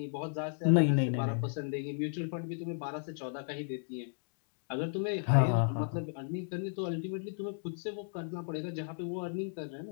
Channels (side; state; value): right; silent; digital silence